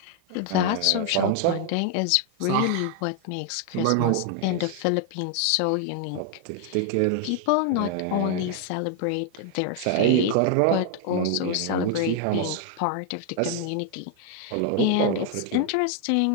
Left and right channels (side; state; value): both; different; correlation 0.00